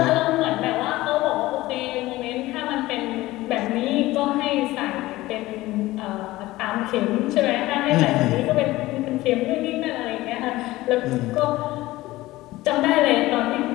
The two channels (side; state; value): right; quieter; 18.0 dB